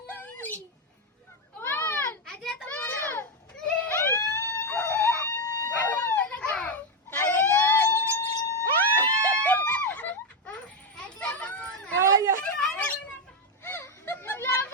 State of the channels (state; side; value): normal; both; correlation 0.05